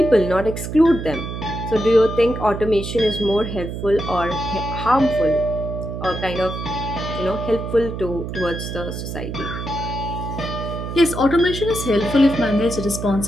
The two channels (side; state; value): right; noise; hum, 6 dB below the sound